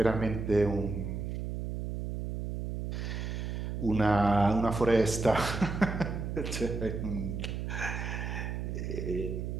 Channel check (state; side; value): noise; right; hum, 4 dB below the sound